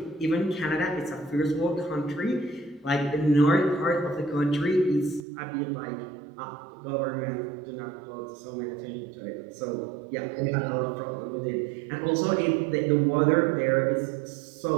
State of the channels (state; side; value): drops out; left; at 5.2 s